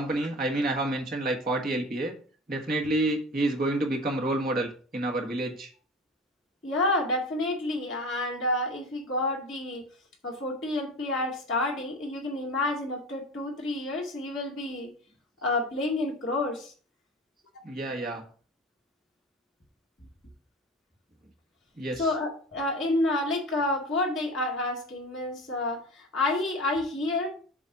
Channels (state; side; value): normal; both; correlation 0.33